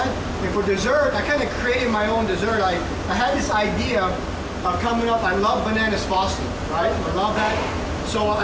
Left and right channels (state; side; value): identical; both; correlation 1.00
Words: And for dessert, I kind of created my own dessert. I had this idea coming up. I love bananas frosted, right? I love that. So